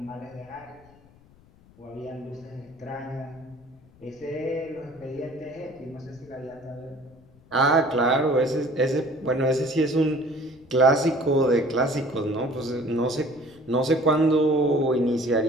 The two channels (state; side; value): noise; left; rumble, 27 dB below the sound